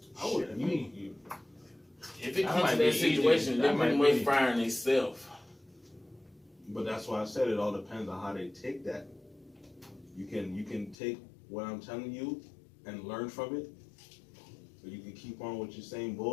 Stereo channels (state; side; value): drops out; right; at 11.0 s